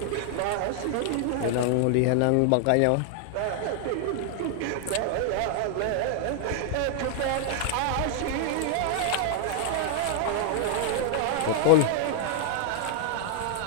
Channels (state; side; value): different; both; correlation 0.00